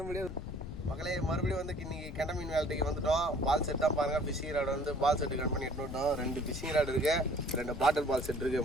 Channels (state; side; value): noise; left; rumble, 8 dB below the sound